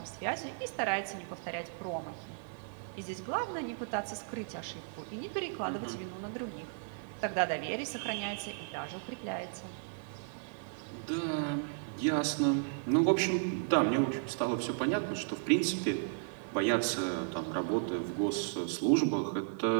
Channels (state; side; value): silent; left; digital silence